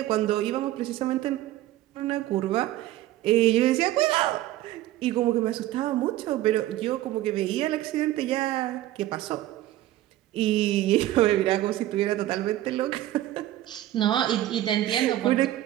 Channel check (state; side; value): quieter; left; 14.5 dB